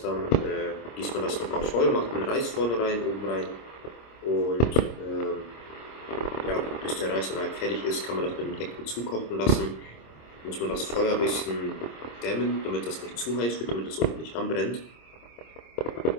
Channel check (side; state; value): right; late; 26 ms